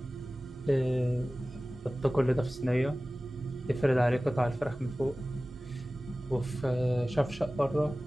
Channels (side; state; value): both; normal; correlation 0.97